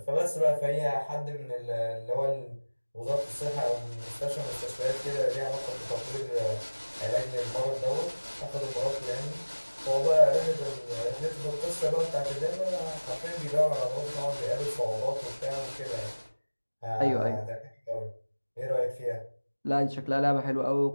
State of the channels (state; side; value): inverted; both; correlation -1.00